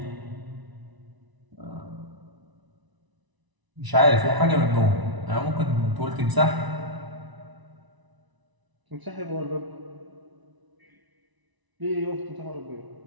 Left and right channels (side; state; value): left; late; 1.0 ms